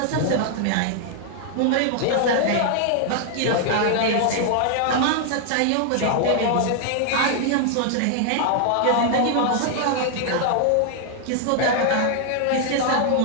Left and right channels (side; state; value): both; different; correlation 0.00